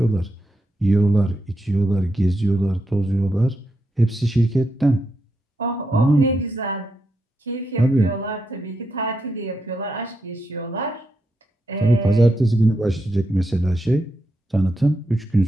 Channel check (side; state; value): both; normal; correlation 0.84